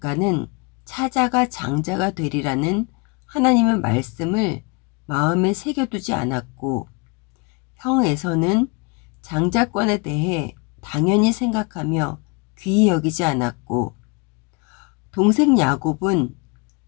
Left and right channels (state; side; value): quieter; right; 30.7 dB